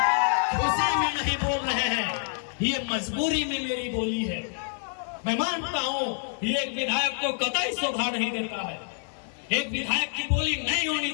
खुशी में नहीं बोल रहे हैं, ये मजबूरी में मेरी बोली है। मैं मानता हूं ये एक विधायक को कतई शोभा नहीं देता है, एक विधायक की बोली नहीं होनी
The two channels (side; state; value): right; silent; 60 dB below the other